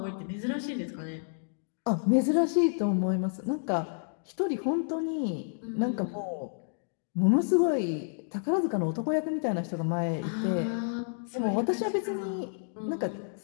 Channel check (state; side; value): silent; right; digital silence